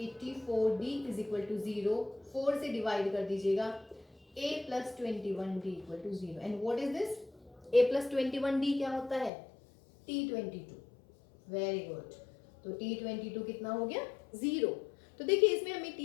is equal to 0। 4 से डिवाइड कर दीजिएगा, A plus 21D equal to 0। And what is this? A plus 21D क्या होता है? T22। वेरी गुड, तो T22 कितना हो गया? 0। तो देखिए इसमें हमें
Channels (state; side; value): drops out; right; at 9.3 s